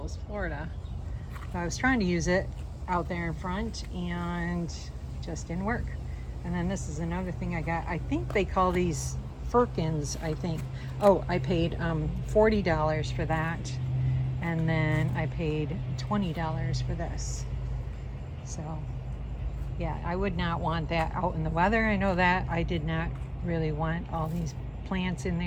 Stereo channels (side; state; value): both; identical; correlation 1.00